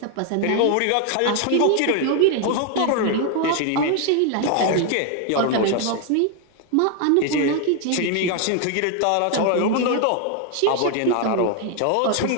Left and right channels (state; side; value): different; both; correlation 0.01